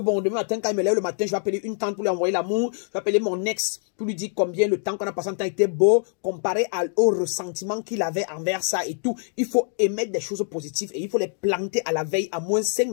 demain matin, quand il me lève le matin, je vais appeler une tante pour lui envoyer l'amour. Je vais appeler mon ex pour lui dire combien le temps qu'on a passé en temps était beau, comparé au ressentiment qu'il avait envers ça et tout. Il faut émettre des choses positives et il faut les planter à la veille, à moins 5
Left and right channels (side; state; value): right; silent; 62 dB below the other